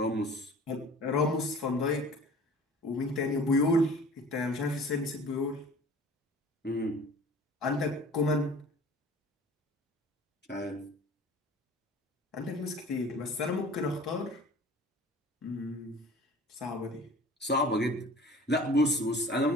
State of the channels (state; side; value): normal; both; correlation 0.45